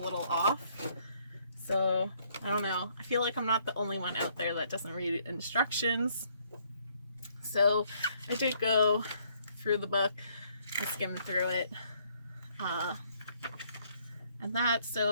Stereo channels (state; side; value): inverted; both; correlation -0.67